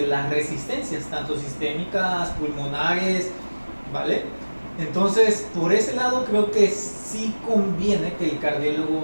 las resistencias, tanto sistémicas, pulmonares, ¿vale? Entonces, por ese lado creo que sí conviene que el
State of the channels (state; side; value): inverted; both; correlation -1.00